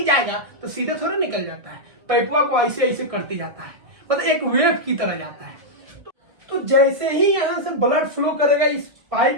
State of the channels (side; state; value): left; late; 1.6 ms